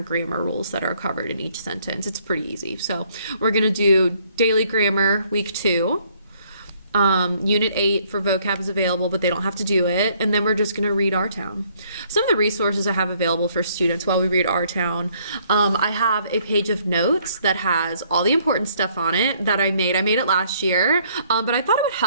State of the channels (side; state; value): both; inverted; correlation -0.65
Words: grammar rules that are covered in each sentence. It's pretty easy. So we're going to do daily grammar week 2. Unit 8 for vocab is available, but they don't have to do it. And then we're just going to read our town. Some of the resources I have available for students while we read our town. I have a page of notes that has all the important stuff on it that I made. I made it last year, but I thought it would